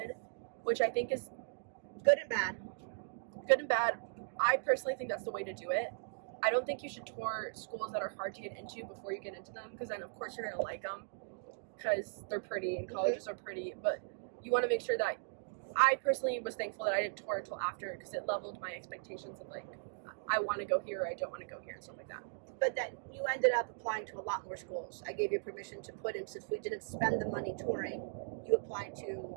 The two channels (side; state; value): left; silent; digital silence